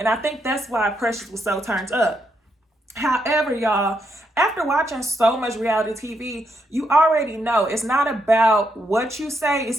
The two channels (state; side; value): normal; both; correlation 0.78